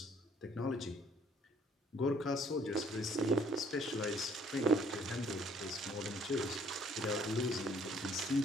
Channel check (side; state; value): both; normal; correlation 0.61